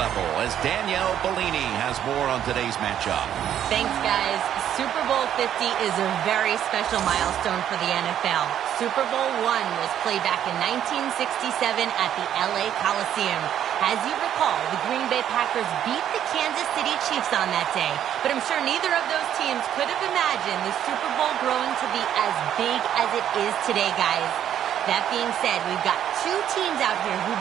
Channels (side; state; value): left; quieter; 10.3 dB